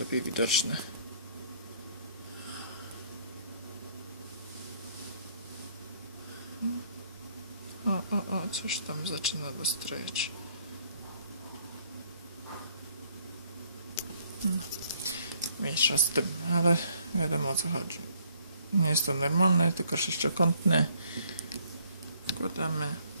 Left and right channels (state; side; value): inverted; both; correlation -0.65